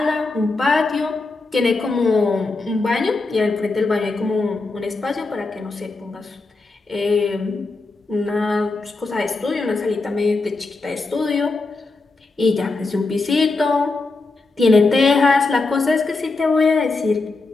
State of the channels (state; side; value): quieter; right; 3.6 dB